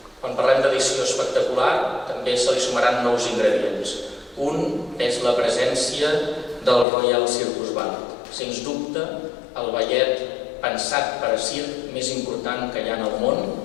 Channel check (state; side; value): drops out; right; at 6.9 s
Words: Quan parlem d'edició espectacular, també se li sumaran nous ingredients. Un és la presència del Royal Circus Ballet. Sens dubte, el ballet pensat per a circ més important que hi ha en el món,